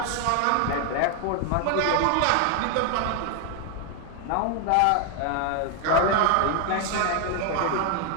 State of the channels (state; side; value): different; both; correlation 0.00